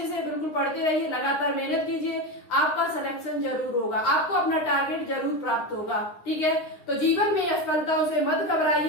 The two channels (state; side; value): late; right; 9.7 ms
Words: बिल्कुल पढ़ते रहिए, लगातार मेहनत कीजिए, आपका सिलेक्शन जरूर होगा, आपको अपना टारगेट जरूर प्राप्त होगा, ठीक है। तो जीवन में असफलताओं से मत